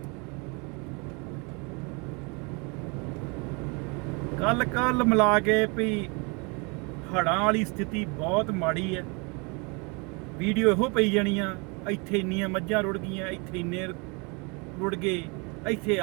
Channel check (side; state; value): left; quieter; 31.0 dB